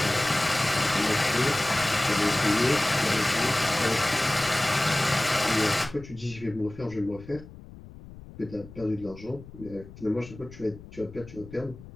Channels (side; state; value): left; noise; rumble, 17 dB below the sound